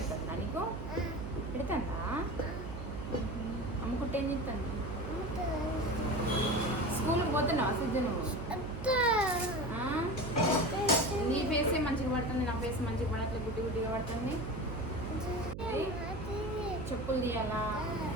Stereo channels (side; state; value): right; noise; hum, 8 dB below the sound